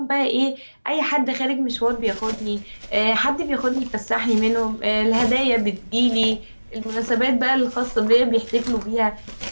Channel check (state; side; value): inverted; both; correlation -1.00